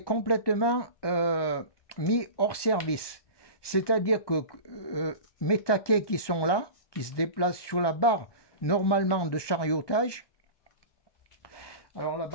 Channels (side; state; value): right; late; 1.2 ms